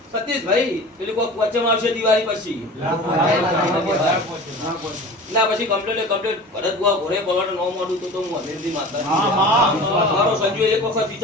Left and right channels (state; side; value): normal; both; correlation 0.37